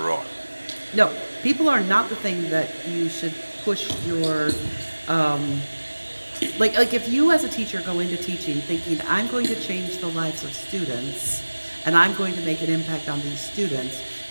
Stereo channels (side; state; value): both; inverted; correlation -1.00